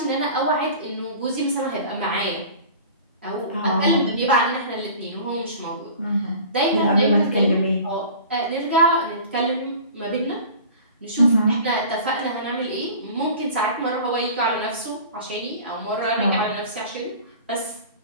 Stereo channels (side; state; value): both; inverted; correlation -0.41